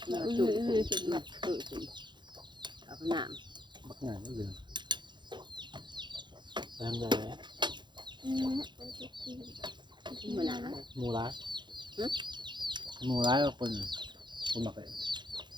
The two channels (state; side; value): late; left; 0.22 ms